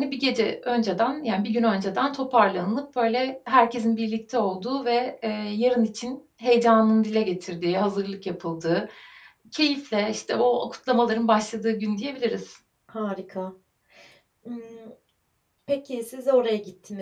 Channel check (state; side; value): identical; both; correlation 1.00